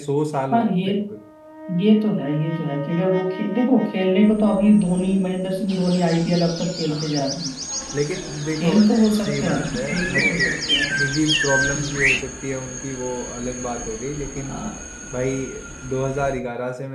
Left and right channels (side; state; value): both; identical; correlation 1.00